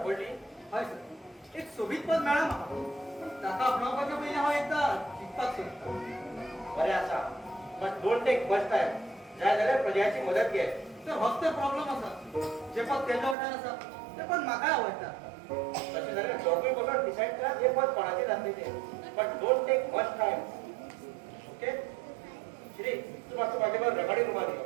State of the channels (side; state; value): left; drops out; at 13.4 s